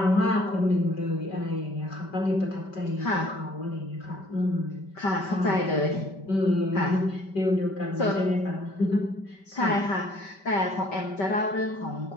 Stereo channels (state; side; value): late; right; 5.2 ms